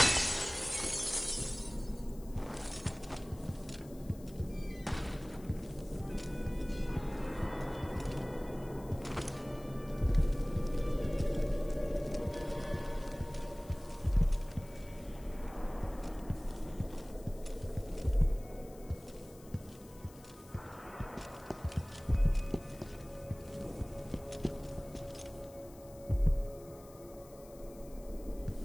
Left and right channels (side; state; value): left; noise; hiss, 23 dB below the sound